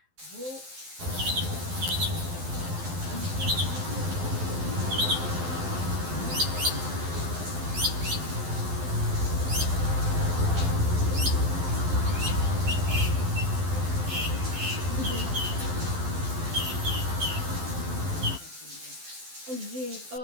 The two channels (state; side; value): late; left; 12 ms